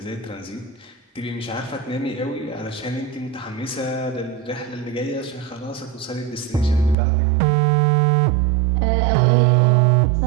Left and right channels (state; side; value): drops out; left; at 7.0 s